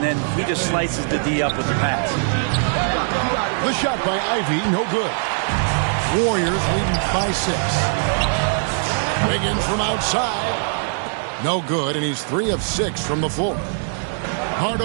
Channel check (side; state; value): left; silent; 65 dB below the other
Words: then he just slices the D up with the pass. The shot by Ivy, no good. Warriors leading by 6. Wiggins from outside. No good, and he's 3 of 6 from the floor.